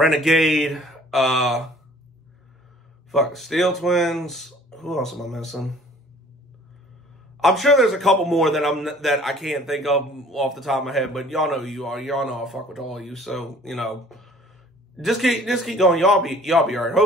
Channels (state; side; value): normal; both; correlation 0.52